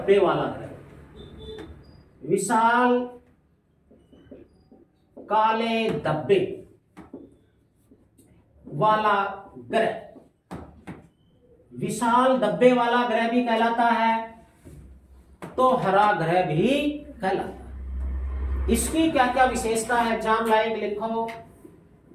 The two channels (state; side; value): identical; both; correlation 1.00